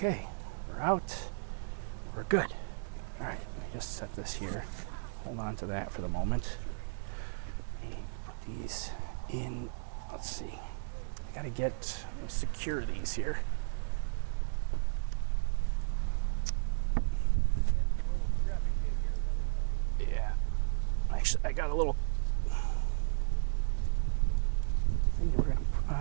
we're out. We're good. All right, let me just set this here. Hold on to that for the moment. Put these in. Let's see. I got to secure these here. Actually, I got a little thing we're gonna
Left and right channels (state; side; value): silent; left; digital silence